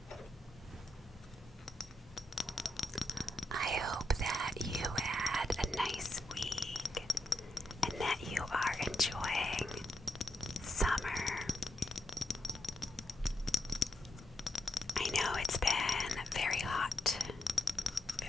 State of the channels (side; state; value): both; normal; correlation 0.83